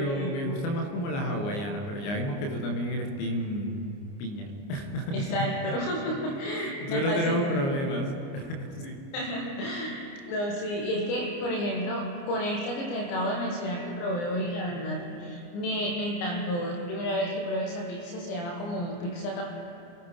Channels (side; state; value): right; late; 29 ms